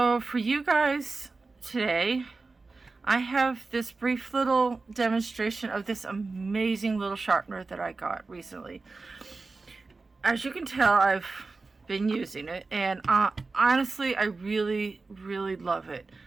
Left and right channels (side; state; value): left; quieter; 3.8 dB